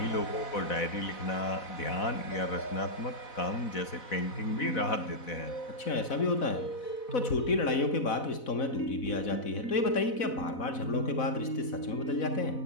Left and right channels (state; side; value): late; right; 4.0 ms